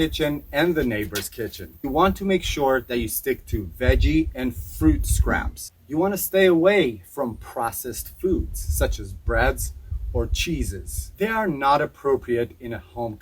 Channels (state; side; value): identical; both; correlation 1.00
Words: and the neighbor's kitchen. You want to make sure that you stick to veggie and fruit scraps. You want to stay away from processed foods such as breads or cheeses. They are not appropriate in a home